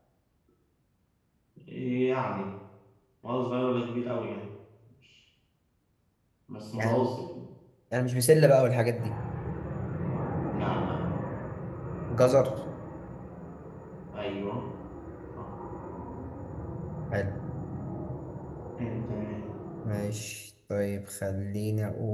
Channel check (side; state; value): both; identical; correlation 1.00